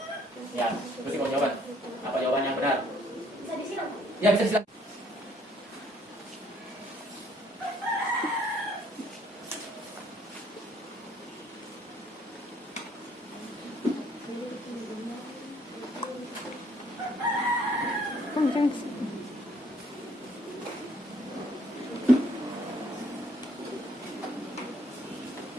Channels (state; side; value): normal; both; correlation 0.63